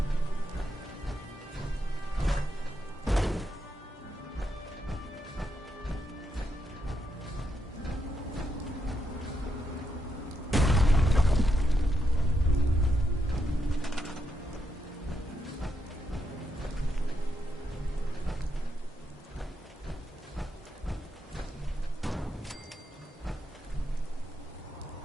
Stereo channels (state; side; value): normal; both; correlation 0.82